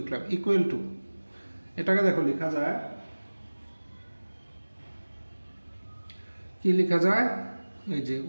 equal to, এটাকে দেখো লেখা যায়, কি লেখা যায়? এই যে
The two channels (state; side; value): inverted; both; correlation -1.00